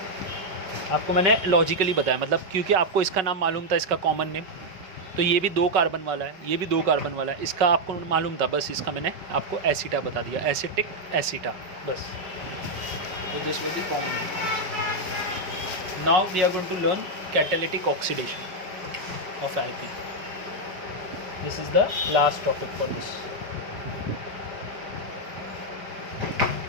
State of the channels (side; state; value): left; late; 5.3 ms